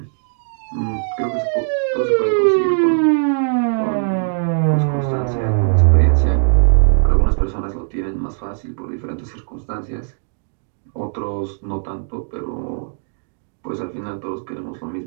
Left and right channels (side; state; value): left; silent; digital silence